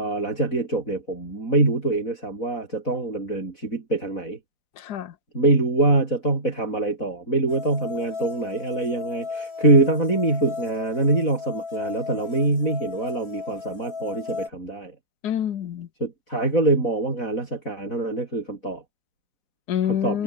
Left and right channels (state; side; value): late; right; 4.4 ms